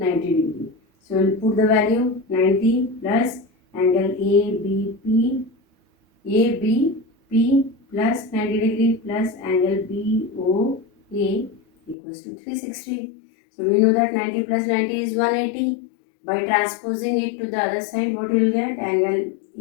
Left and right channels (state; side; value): drops out; right; at 12.0 s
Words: degree. So we'll put the value 90 plus angle ABP plus 90 degree plus angle BOA equals to 360. So we know that 90 plus 90 is 180. By transposing it to the other side, what you will get? Angle